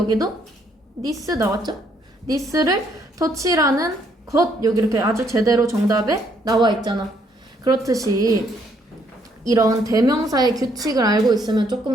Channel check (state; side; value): normal; both; correlation 0.69